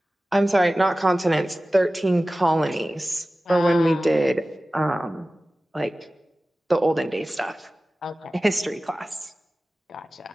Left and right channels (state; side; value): normal; both; correlation 0.96